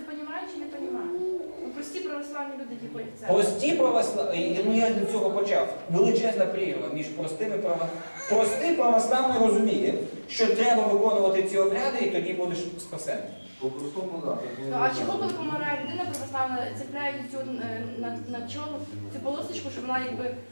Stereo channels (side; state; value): both; inverted; correlation -1.00